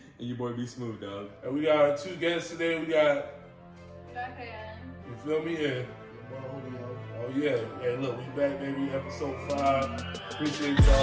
your boy be smooth, dog. And we got our two guests today. We got, you feel me? And, oh yeah. Hey, look, we back, baby. Episode 5. Appreciate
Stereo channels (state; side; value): identical; both; correlation 1.00